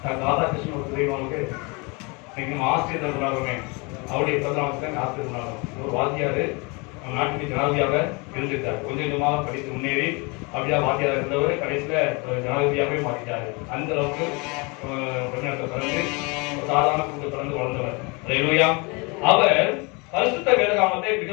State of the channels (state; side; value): quieter; right; 29.2 dB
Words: டாக்டர் ராதாகிருஷ்ணன் ஒரு தெரியுமா உங்களுக்கு? நம்ம ஆசிரியர் கொண்டாடுறோமே, அவருடைய பிறந்தநாளுக்கு ஆசிரியர் கொண்டாடுறோம். ஒரு வாத்தியாரு நம்ம நாட்டுக்கு ஜனாதிபதியாக இருந்திருக்காரு. கொஞ்சமாக படித்து முன்னேறி அப்படியா வாத்தியார் இருந்தவர் கடைசியில ஜனாதிபதியாகவே மாற்றிட்டாரு. அந்த அளவுக்கு தமிழ்நாட்டில் பிறந்து சாதாரண குடும்பத்தில் பிறந்து வளர்ந்தவர். அல்லேலூயா. அவர் பரிசுத்த வேதாகமத்தை